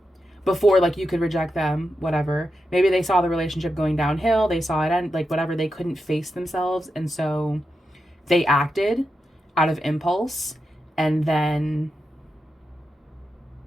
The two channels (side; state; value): both; normal; correlation 0.88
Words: before like you could reject them, whatever. Maybe they saw the relationship going downhill, they saw it end, like whatever, they couldn't face themselves, and so they acted out of impulse, and then